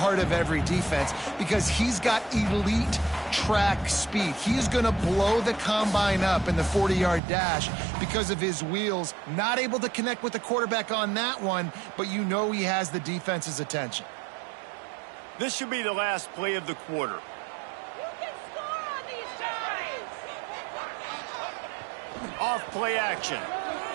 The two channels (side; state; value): left; drops out; at 7.2 s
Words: of every defense because he's got elite track speed. He's going to blow the combine up in the 40-yard dash because of his wheels. Not able to connect with the quarterback on that one, but you know he has the defense's attention. This should be the last play of the quarter. You can score on these drives. Off play action.